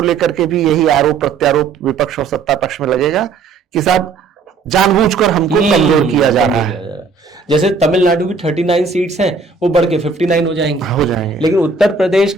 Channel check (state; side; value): quieter; left; 4.6 dB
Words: लेकर के भी यही आरोप प्रत्यारोप विपक्ष और सत्ता पक्ष में लगेगा कि साहब जानबूझकर हमको कमजोर किया जा रहा है। जैसे तमिलनाडु की 39 सीट्स हैं, वो बढ़ के 59 हो जाएंगे, लेकिन उत्तर प्रदेश